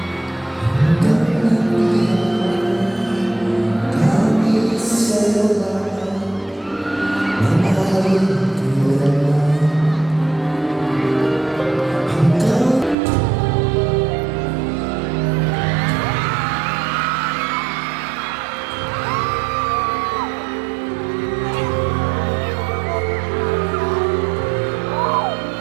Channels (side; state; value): left; drops out; at 13.0 s